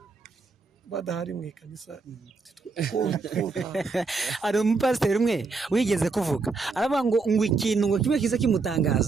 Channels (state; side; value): quieter; left; 4.2 dB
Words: badahari mu ikanisa hari umupasiteri umwe wigeze kuvuga aravuga ngo ikintu ngo kimwe kiza